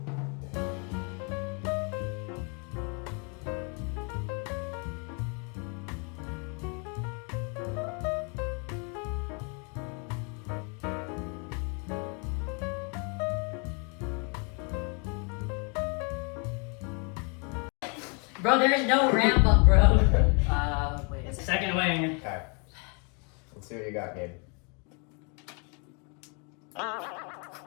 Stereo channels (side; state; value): right; quieter; 35.3 dB